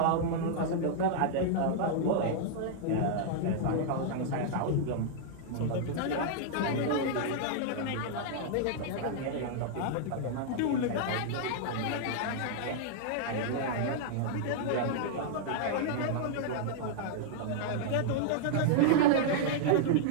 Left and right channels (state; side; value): different; both; correlation -0.01